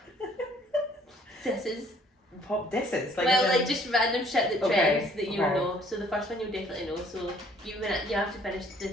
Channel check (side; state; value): both; normal; correlation 0.60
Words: disses. Pop disses? Like just random shit that trends that you'll okay. know. So the first one you'll definitely know. So you have to finish